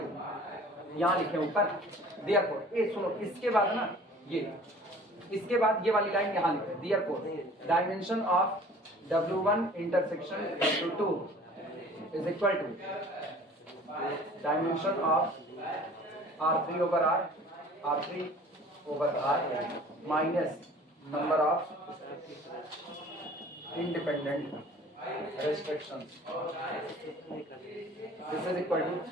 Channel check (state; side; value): normal; both; correlation 0.48